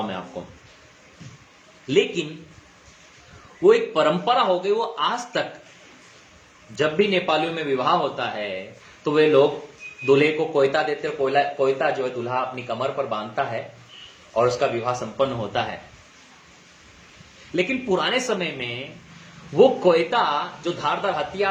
मैं आपको। लेकिन वो एक परंपरा हो गई, वो आज तक जब भी नेपालियों में विवाह होता है तो वे लोग दूल्हे को कोयता देते हैं। कोयता जो है दूल्हा अपनी कमर पर बांधता है और उसका विवाह संपन्न होता है। लेकिन पुराने समय में वो कोयता जो धारदार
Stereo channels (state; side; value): identical; both; correlation 1.00